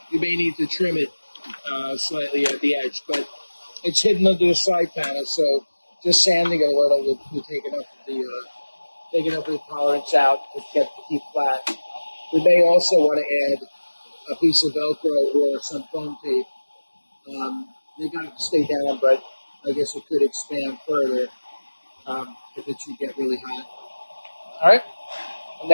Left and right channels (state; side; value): inverted; both; correlation -1.00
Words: you may need to trim it slightly at the edge, but it's hidden under the side panel, so just sanding it a little will take enough of the tolerance out to get the heat flat. We may also want to add a piece of Velcro or some foam tape. They got to stay down, but I guess it could expand further if it should get really hot. All right, and